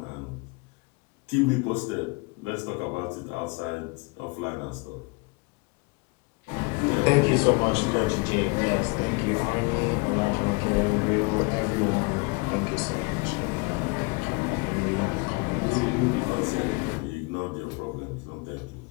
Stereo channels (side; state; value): right; quieter; 29.6 dB